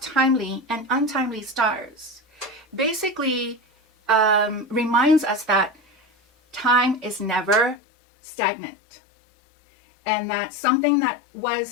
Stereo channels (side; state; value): right; drops out; at 7.8 s